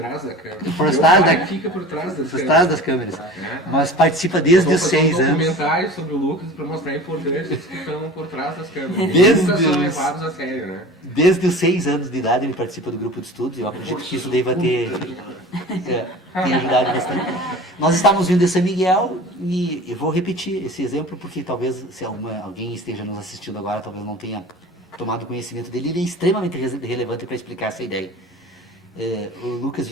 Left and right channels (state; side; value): normal; both; correlation 0.39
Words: da câmera. Fica por trás das câmeras. Mas participa desde os 6 anos. Documentário sobre o Lucas para mostrar a importância dos que estão por trás das câmeras. Nunca são levados a sério, né? Desde os 6 anos de idade ele participa do grupo de estudos. Eu acredito que isso deva ter ajudado bastante. Nós estávamos vindo de São Miguel e eu vou repetir esse exemplo porque talvez, se alguém esteja nos assistindo agora, talvez não tenha tomado conhecimento dele. Ele é extremamente relevante para explicar essa ideia. O Lucas